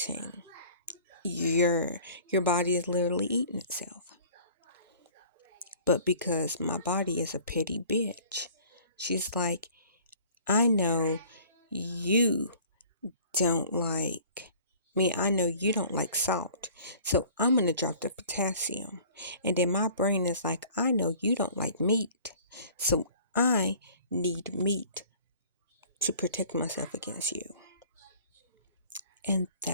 your body is literally eating itself. But because my body is a petty bitch, she's like, I know you don't like I know you don't like salt. So I'm going to drop the potassium. And then my brain is like, I know you don't like meat. So I need meat to protect myself against you. And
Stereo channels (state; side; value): inverted; both; correlation -0.50